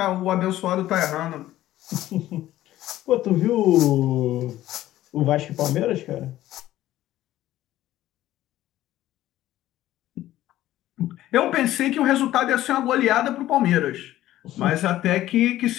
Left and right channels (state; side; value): quieter; right; 14.3 dB